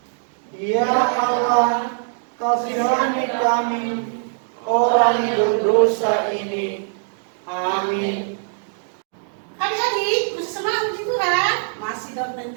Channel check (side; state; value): left; silent; digital silence